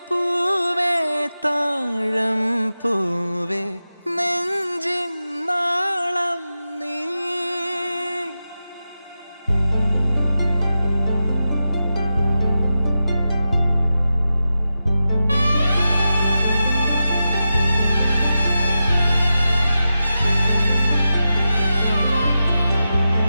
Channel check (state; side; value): inverted; both; correlation -0.91